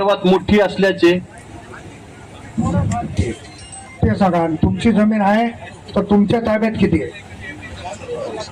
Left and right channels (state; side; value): identical; both; correlation 1.00